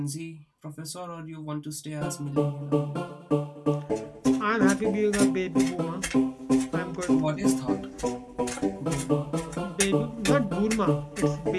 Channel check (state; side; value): identical; both; correlation 1.00